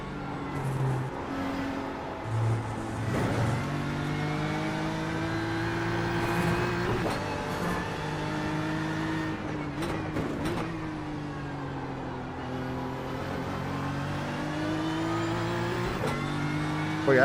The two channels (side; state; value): both; identical; correlation 1.00